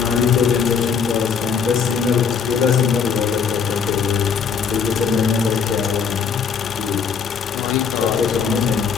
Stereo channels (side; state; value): right; quieter; 6.3 dB